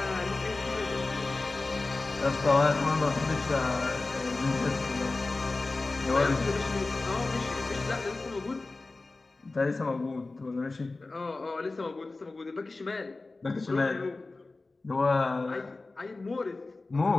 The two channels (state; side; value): quieter; right; 3.4 dB